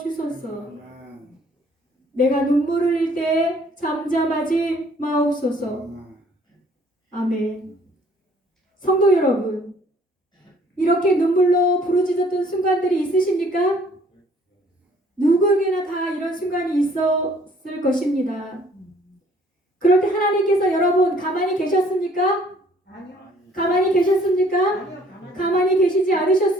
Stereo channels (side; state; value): both; normal; correlation 0.59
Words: 주소서. 내가 눈물을 흘릴 때 잠잠하지 마옵소서. 아멘. 성도 여러분, 이렇게 눈물로 부르짖었던 순간들이 있으십니까? 누구에게나 다 이런 순간이 있었을 것입니다. 그럴 때 하나님께서 여러분 가만히 계셨습니까? 아니요. 가만히 계셨습니까? 아니요. 가만히 계시지